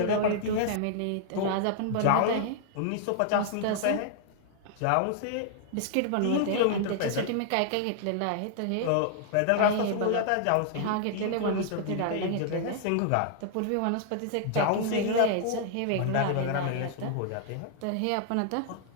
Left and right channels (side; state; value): both; different; correlation 0.00